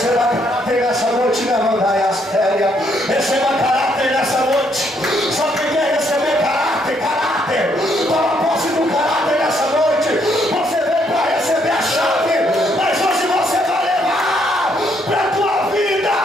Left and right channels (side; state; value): both; normal; correlation 0.72